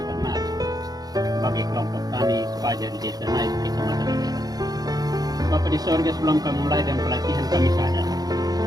ternak bagi kelompok tani fajar di Desa Naik, Kecamatan Daerah. Bapak di sorga, sebelum kami mulai dan pelatihan kami sadar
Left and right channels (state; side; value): late; left; 0.19 ms